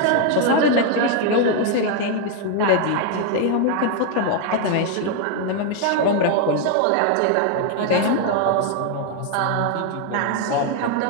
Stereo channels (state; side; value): different; both; correlation 0.00